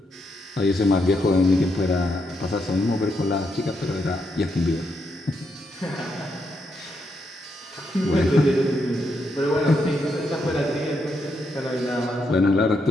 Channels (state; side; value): normal; both; correlation 0.80